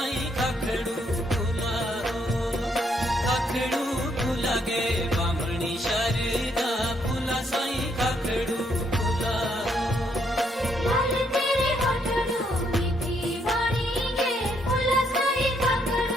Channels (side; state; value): both; normal; correlation 0.72